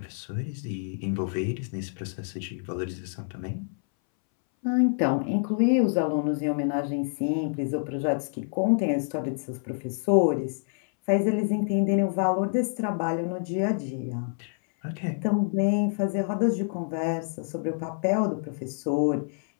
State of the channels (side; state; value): right; silent; 60 dB below the other